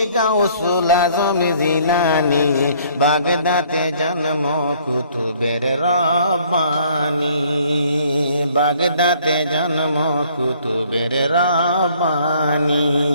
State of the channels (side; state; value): both; inverted; correlation -0.60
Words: গাউসুল আজম জিলানী, বাগদাতে জন্ম কুতুবের রব্বানী, বাগদাতে জন্ম কুতুবের রব্বানী।